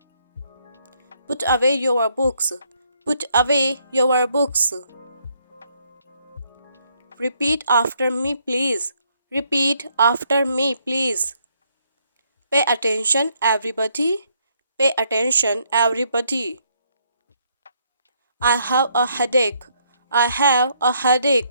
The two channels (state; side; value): inverted; both; correlation -0.71